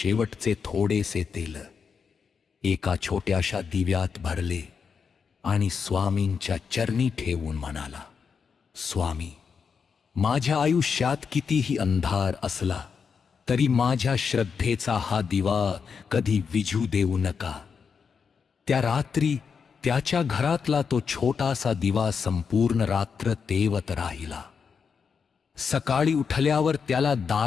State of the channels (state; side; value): quieter; right; 6.1 dB